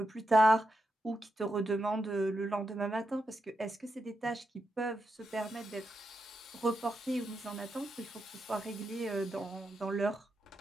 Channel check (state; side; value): normal; both; correlation 0.86